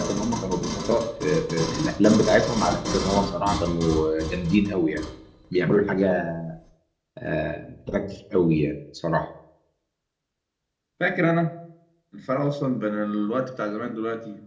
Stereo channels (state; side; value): identical; both; correlation 1.00